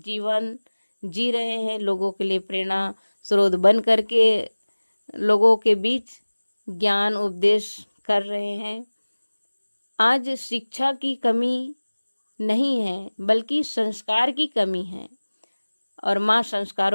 जी रहे हैं, लोगों के लिए प्रेरणा स्रोत बन करके लोगों के बीच ज्ञान उपदेश कर रहे हैं। आज शिक्षा की कमी नहीं है, बल्कि संस्कार की कमी है, और माँ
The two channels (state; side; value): inverted; both; correlation -1.00